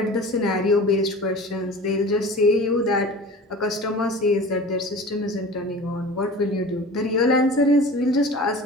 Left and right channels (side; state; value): both; normal; correlation 0.38